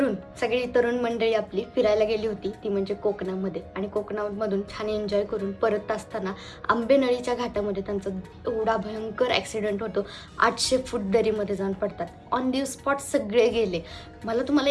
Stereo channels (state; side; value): identical; both; correlation 1.00